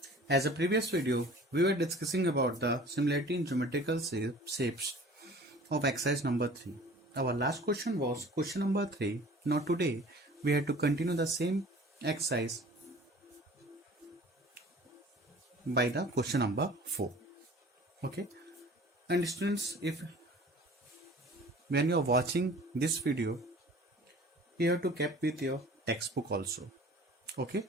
As a previous video, we were discussing about the similarity in geometrical shapes of exercise number 3. Our last question was question number 3. Now today, we had to continue the same exercise by the question number 4. Okay. And students, if when you are watching this video, you have to keep with your textbook also. Okay.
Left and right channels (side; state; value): both; normal; correlation 0.46